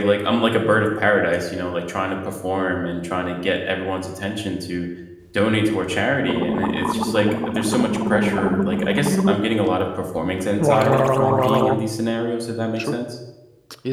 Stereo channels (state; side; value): identical; both; correlation 1.00